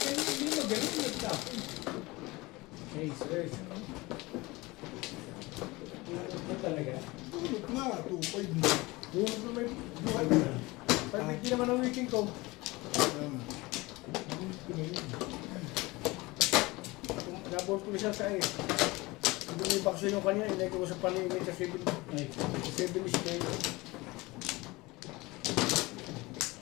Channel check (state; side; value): quieter; right; 22.2 dB